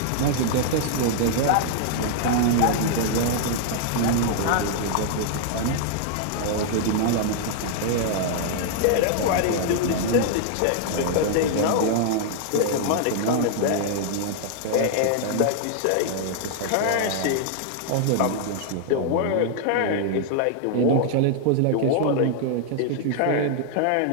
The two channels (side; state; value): both; different; correlation -0.01